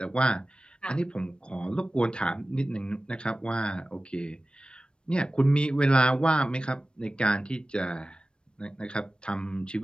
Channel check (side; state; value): right; late; 0.055 ms